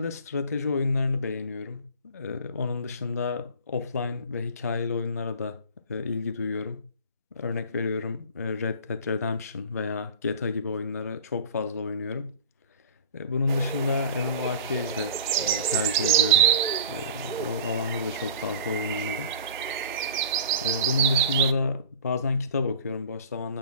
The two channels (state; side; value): inverted; both; correlation -0.38